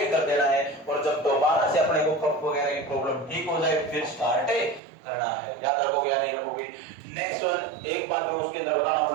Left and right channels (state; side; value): drops out; left; at 4.8 s